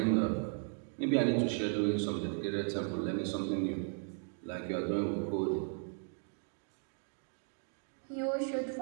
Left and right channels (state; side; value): silent; left; 54 dB below the other